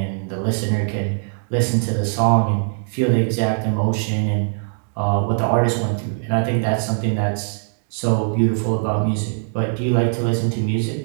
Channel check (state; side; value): silent; left; digital silence